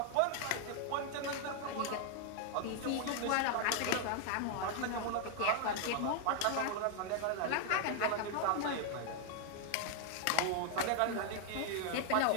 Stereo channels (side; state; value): both; different; correlation 0.00